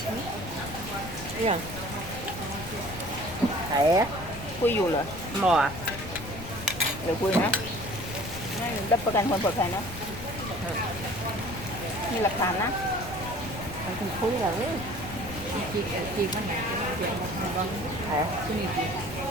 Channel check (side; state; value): left; noise; rumble, 11 dB below the sound